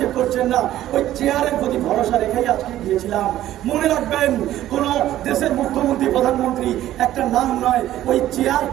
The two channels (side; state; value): left; quieter; 13.4 dB